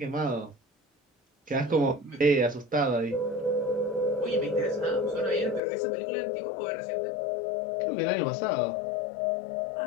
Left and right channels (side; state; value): right; drops out; at 5.6 s